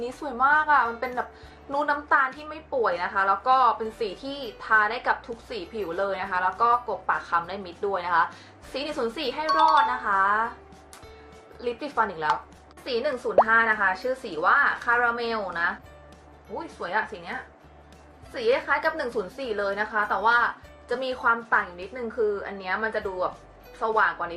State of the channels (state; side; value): identical; both; correlation 1.00